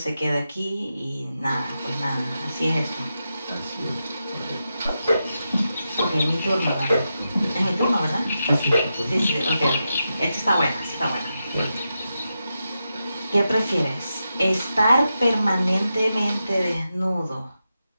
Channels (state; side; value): inverted; both; correlation -0.89